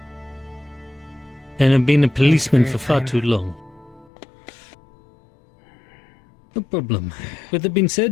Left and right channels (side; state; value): right; drops out; at 4.1 s